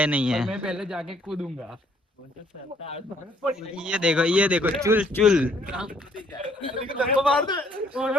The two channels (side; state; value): both; normal; correlation 0.65